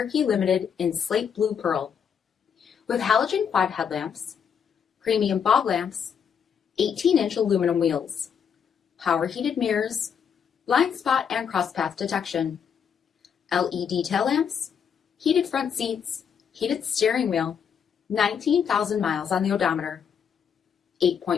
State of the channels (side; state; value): right; quieter; 7.4 dB